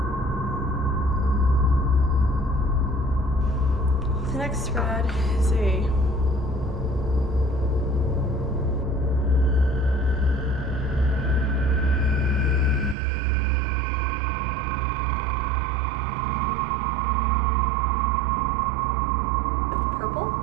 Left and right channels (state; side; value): drops out; left; at 13.0 s